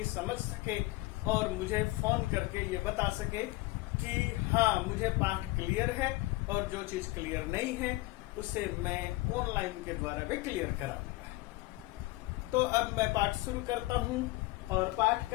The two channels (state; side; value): quieter; right; 20.2 dB